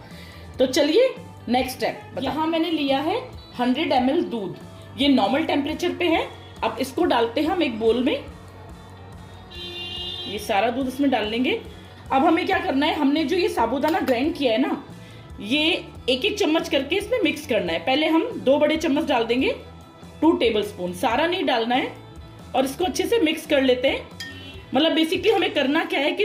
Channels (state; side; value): identical; both; correlation 1.00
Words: तो चलिए नेक्स्ट स्टेप। यहाँ मैंने लिया है 100 ml दूध। ये नॉर्मल टेम्परेचर पे है। अब इसको डालते हैं हम एक बोल में। ये सारा दूध इसमें डाल लेंगे। अब हमें क्या करना है, हमने जो ये साबूदाना ग्राइंड किया है ना ये एक एक चम्मच करके इसमें मिक्स करना है। पहले हम 2 बड़े चम्मच डाल देंगे, 2 टेबलस्पून, सारा नहीं डालना है। और इसको अच्छे से मिक्स कर लेते हैं। मतलब बेसिकली हमें करना क्या है कि